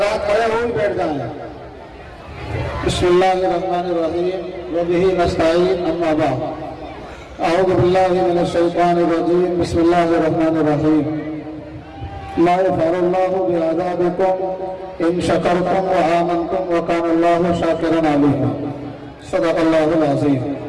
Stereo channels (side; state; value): both; identical; correlation 1.00